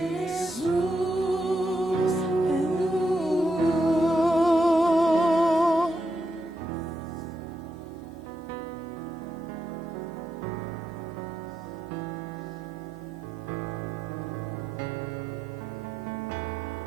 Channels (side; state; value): both; normal; correlation 0.83